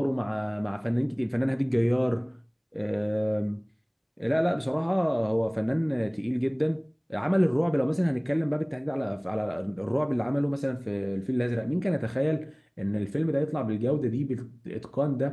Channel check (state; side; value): identical; both; correlation 1.00